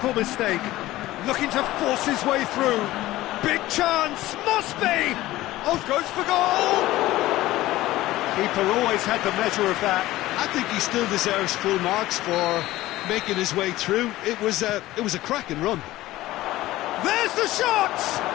mistake. Looking to force his way through. Big chance. Must be. Oh, goes for goal. Keeper always had the measure of that. I think he still deserves full marks for making his way through. It was a cracking run. There's the shot.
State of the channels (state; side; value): quieter; right; 16.6 dB